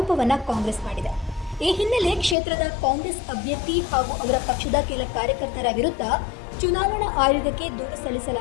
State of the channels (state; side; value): drops out; right; at 2.4 s